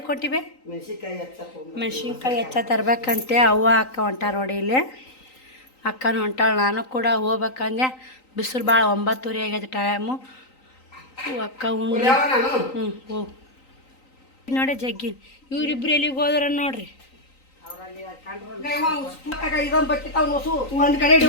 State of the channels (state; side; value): late; right; 3.9 ms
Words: ಹೊಂಟಿವೆ? ಮೆಣಸಿನ್ಕಾಯಿ ಹೆಚ್ಚ ತರ್ಬೇಕಂತೆ ಅವ್ವ ಅಕ್ಕ ಹೊಂಟಾರ ನೋಡಿ. ಇಲ್ಲಿ ಅಕ್ಕನೂ ಹೊಂಟಾಳ, ನಾನು ಕೂಡ ಹೋಗ್ಬೇಕಂದೆ. ಬಿಸಿಲು ಭಾಳ 9:30 ಆಗೈತೆ ಟೈಮು. ಅಕ್ಕ ಉಂಡ್ಲಿ. ಹೋಗು ನೋಡಿ ಜಗ್ಗಿ. ಇವ್ರಿಬ್ರು ಎಲ್ಲಿಗೆ ಹೋದ್ರ ನೋಡ್ರಿ. ಒಂದು ಕಡೆ